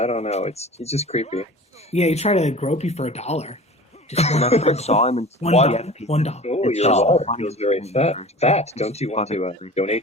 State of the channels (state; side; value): normal; both; correlation 0.39